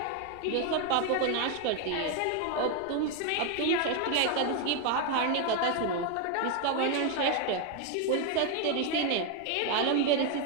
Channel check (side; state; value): both; different; correlation 0.01